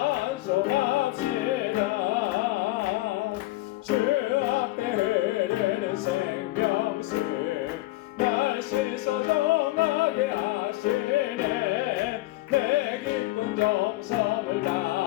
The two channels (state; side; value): quieter; right; 18.5 dB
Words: 주 앞에 흐르는 생명수 날 씻어 정하게 하시네. 내 기쁜 정성을